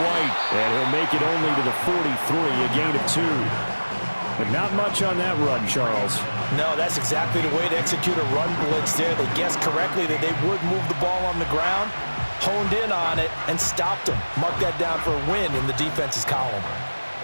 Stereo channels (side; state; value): both; inverted; correlation -1.00